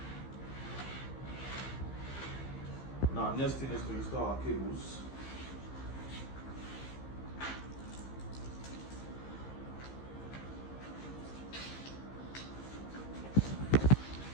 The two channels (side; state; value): right; late; 15 ms